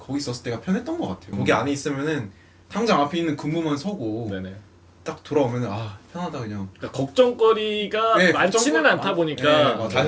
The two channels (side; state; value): both; identical; correlation 1.00